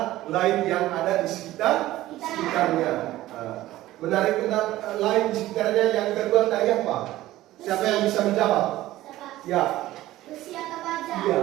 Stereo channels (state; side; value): quieter; left; 15.8 dB